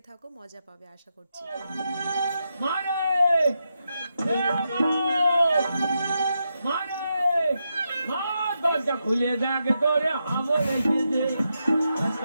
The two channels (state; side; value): inverted; both; correlation -0.85